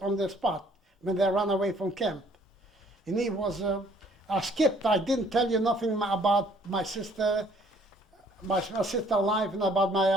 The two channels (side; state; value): both; normal; correlation 0.60